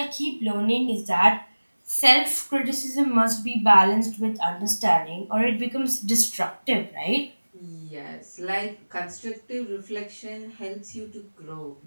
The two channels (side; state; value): both; inverted; correlation -1.00